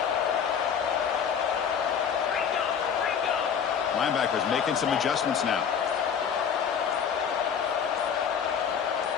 Linebackers making some adjustments now.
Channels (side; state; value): right; quieter; 7.4 dB